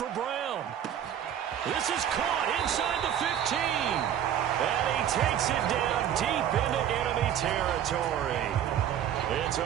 Brown. This is caught inside the 15. And he takes it down deep into enemy territory. It's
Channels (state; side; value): quieter; left; 10.0 dB